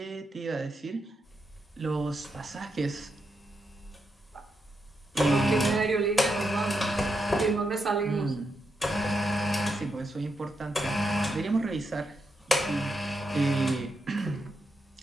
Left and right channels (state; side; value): normal; both; correlation 0.83